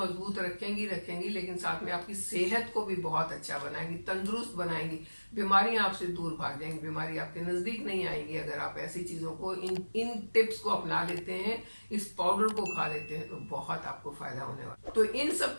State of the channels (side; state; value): both; inverted; correlation -1.00